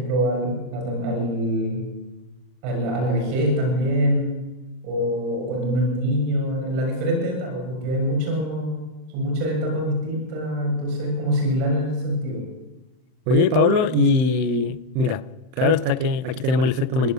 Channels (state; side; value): late; left; 39 ms